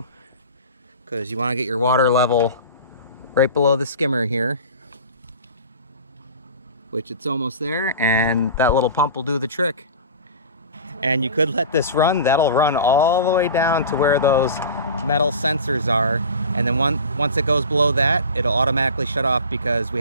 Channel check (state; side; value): inverted; both; correlation -0.35